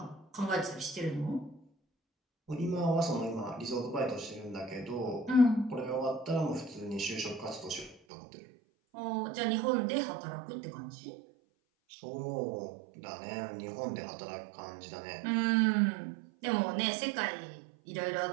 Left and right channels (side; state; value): left; drops out; at 8.0 s